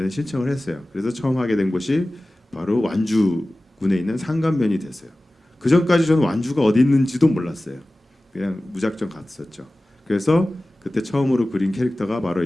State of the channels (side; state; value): both; normal; correlation 0.97